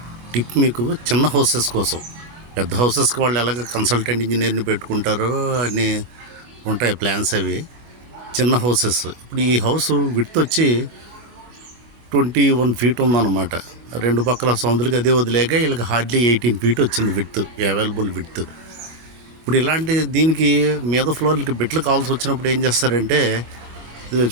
టిప్ మీకు, చిన్న హౌసెస్ కోసం. పెద్ద హౌసెస్కి వాళ్ళు ఎలాగ కన్సల్టెంట్ ఇంజనీర్ని పెట్టుకుంటారో అని ఉంటాయి ప్లాన్స్ అవి. చిన్న హౌసెస్, ఇప్పుడు ఈ హౌస్ విడ్త్ వచ్చి 21 ఫీట్ ఉందన్నమాట. రెండు పక్కల సౌందులకి అదే వదిలేక వీళ్ళకి హార్డ్లీ 18 ఫీట్ వచ్చింది విడ్త్, అవైలబుల్ విడ్త్. ఇప్పుడు ఇలాంటి దీనికి మీద ఫ్లోర్లకి బిట్లు కావాల్సి వచ్చినప్పుడు ఏం చేస్తారంటే, ఇది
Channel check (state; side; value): late; left; 25 ms